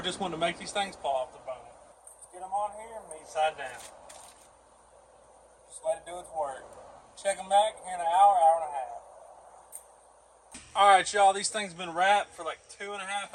wanting to make these things fall off the bone. Let's get them on here, meat side down. Just let it do its work. Check them back here in an hour, hour and a half. All right, y'all, these things have been wrapped for like 2.5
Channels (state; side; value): identical; both; correlation 1.00